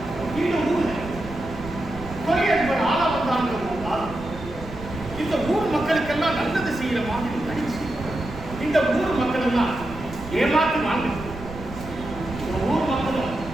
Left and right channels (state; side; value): noise; right; rumble, 13 dB below the sound